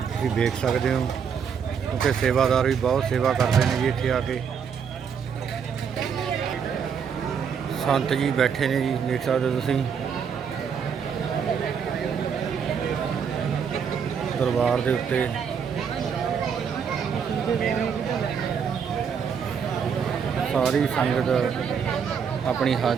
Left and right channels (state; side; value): quieter; left; 7.0 dB